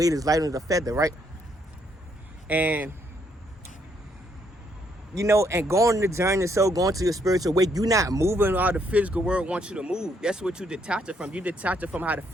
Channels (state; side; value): normal; both; correlation 0.72